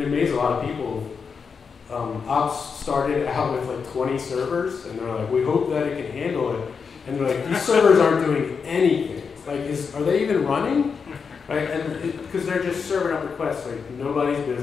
it amazed a lot of people. Ops started out with like 20 servers, and they're like, we hope that it can handle it. And they're like, these servers aren't doing anything. Like, are they even running? Right? And because they're just serving up requests, like nobody's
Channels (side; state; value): right; quieter; 5.7 dB